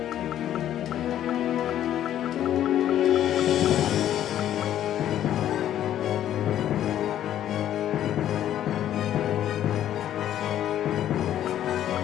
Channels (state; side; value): quieter; right; 11.4 dB